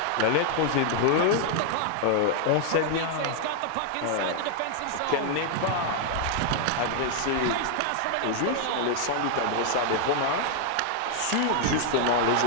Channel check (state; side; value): different; both; correlation 0.00